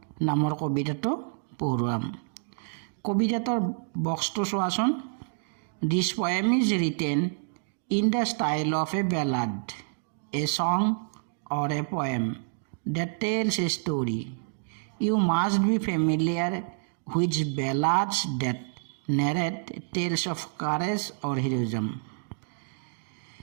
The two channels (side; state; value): left; silent; digital silence